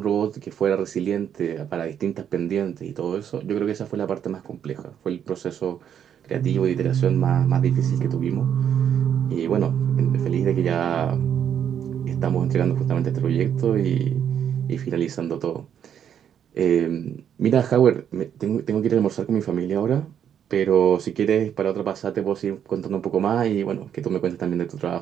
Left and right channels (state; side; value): quieter; left; 8.9 dB